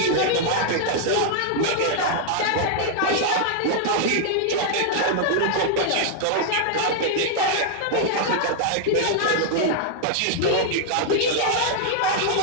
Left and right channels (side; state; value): both; different; correlation 0.00